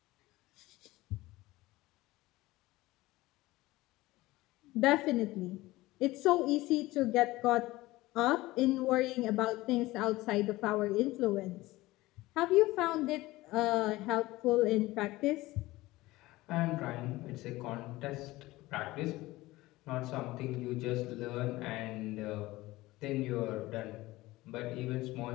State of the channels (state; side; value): quieter; right; 18.9 dB